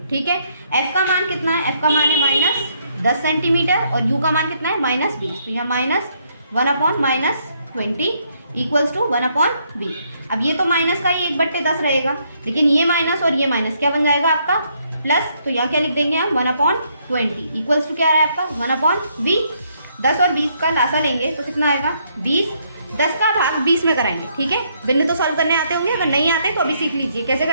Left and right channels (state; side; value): inverted; both; correlation -0.72